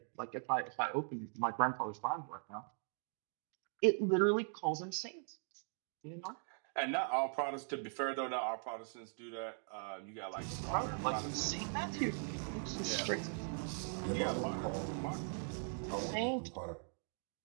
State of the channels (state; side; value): silent; left; 51 dB below the other